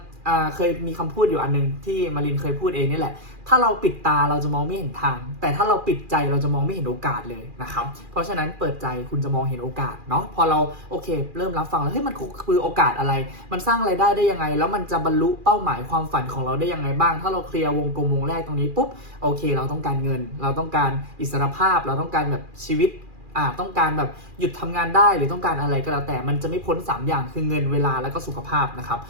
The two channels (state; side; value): late; left; 2.4 ms